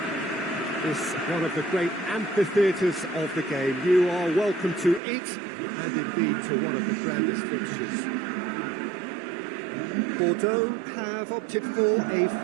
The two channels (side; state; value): left; drops out; at 5.0 s